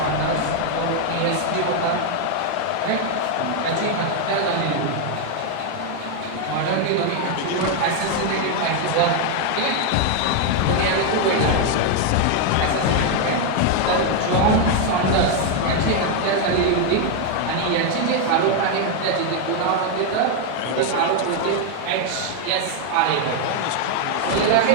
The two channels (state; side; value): different; both; correlation 0.01